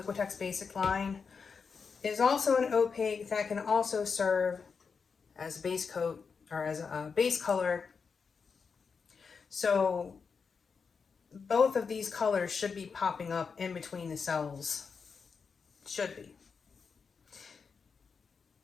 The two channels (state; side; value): quieter; right; 5.5 dB